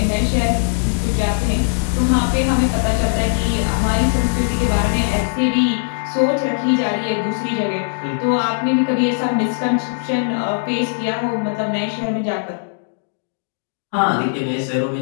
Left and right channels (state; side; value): silent; right; digital silence